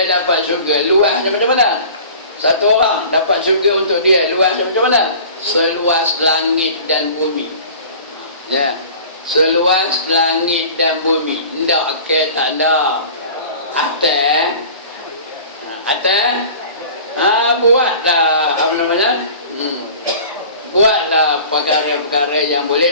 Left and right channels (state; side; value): inverted; both; correlation -0.42